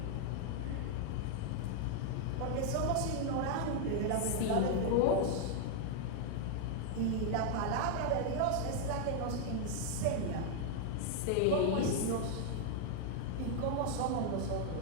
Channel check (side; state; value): both; different; correlation 0.00